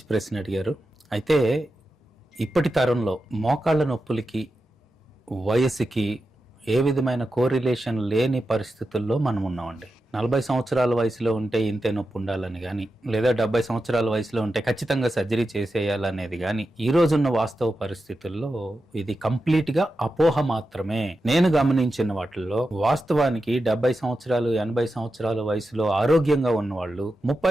ప్రశ్న అడిగారు. అయితే ఇప్పటి తరంలో మోకాళ్ళ నొప్పులకి వయసుకి ఏ విధమైన కోరిలేషన్ లేని పరిస్థితుల్లో మనం ఉన్నామండి. 40 సంవత్సరాల వయసులో ఉంటే ఇంతే నొప్పి ఉండాలని కానీ, లేదా 70 సంవత్సరాల వయసులో ఉంటే ఖచ్చితంగా సర్జరీ చేసేయాలనేది కానీ, ఈ రోజున్న వాస్తవ పరిస్థితుల్లో ఇది కంప్లీట్గా అపోహ మాత్రమే. నేను గమనించిన వాటిల్లో వాస్తవానికి 70 సంవత్సరాలు 80 సంవత్సరాల వయసులో ఆరోగ్యంగా ఉన్నవాళ్ళు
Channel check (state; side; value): normal; both; correlation 0.90